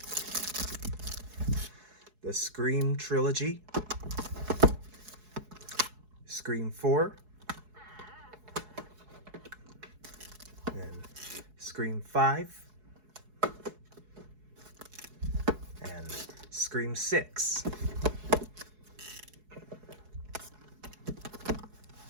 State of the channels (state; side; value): late; left; 4.7 ms